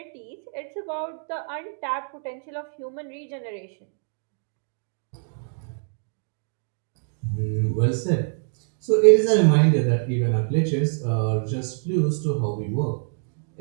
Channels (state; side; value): silent; left; digital silence